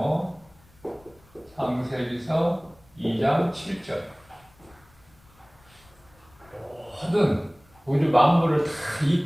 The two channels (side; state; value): left; noise; rumble, 29 dB below the sound